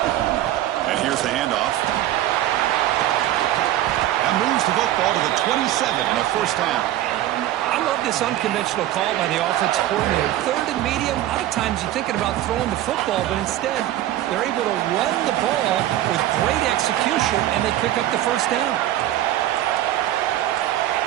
And here's the handoff. That moves the football to the 27 and a first down. I'm this unconventional call by the offensive coordinator. Third and medium, a lot of times you're thinking about throwing the football, but instead they're able to run the ball with great execution, and they pick up the first down.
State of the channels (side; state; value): left; quieter; 13.5 dB